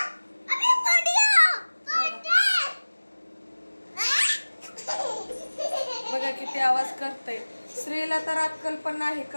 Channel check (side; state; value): both; inverted; correlation -1.00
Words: बघा किती आवाज करतय। श्रीला तर अक्कल पण नाही,